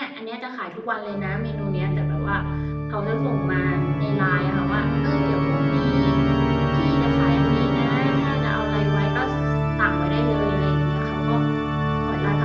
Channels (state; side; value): identical; both; correlation 1.00